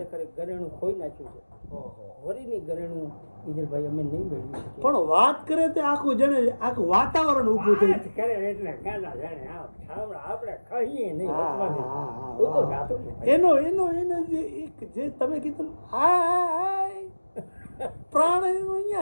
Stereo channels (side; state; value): both; inverted; correlation -1.00